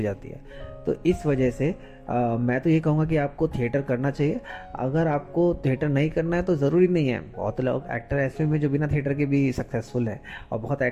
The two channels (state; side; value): identical; both; correlation 1.00